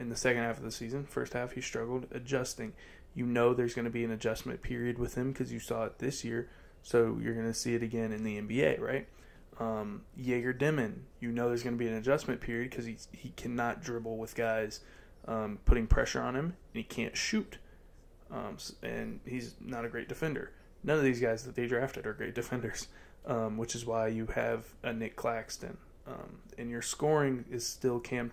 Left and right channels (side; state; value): both; identical; correlation 1.00